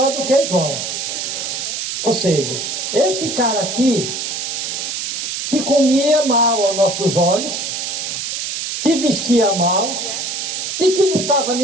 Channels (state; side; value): noise; right; hiss, 3 dB below the sound